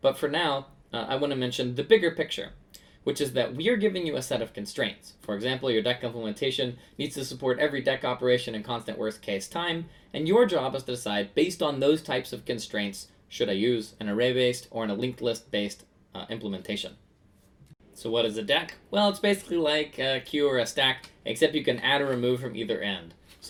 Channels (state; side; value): identical; both; correlation 1.00